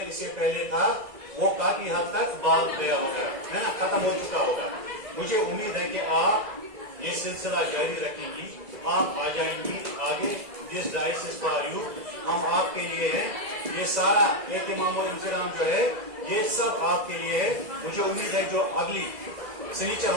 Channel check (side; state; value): left; late; 2.0 ms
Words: اس سے پہلے تھا वो काफी हद तक भाग गया होगा, है ना, खत्म हो चुका होगा। मुझे उम्मीद है कि आप ये सिलसिला जारी रखेंगी, आप आ जाएंगी आगे। This dice is for you, हम आपके लिए हैं। ये सारा एहतिमाम और इंतजाम जो है ये सब आपके लिए है। मुझे उम्मीद है जो अगली सनीचर